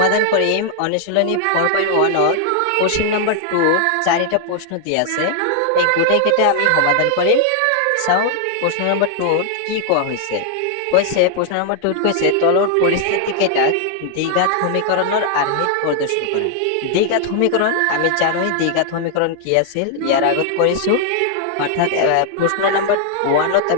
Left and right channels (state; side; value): different; both; correlation 0.00